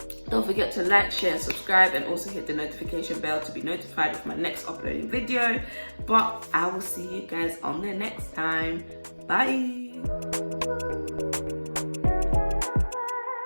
don't forget to like, share, subscribe, and also hit the notification bell to be notified of my next uploading video. But I will see you guys on the next time. Bye!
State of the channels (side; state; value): both; inverted; correlation -1.00